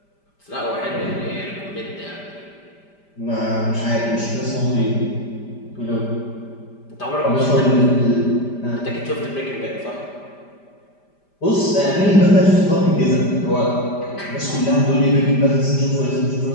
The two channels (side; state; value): right; late; 5.0 ms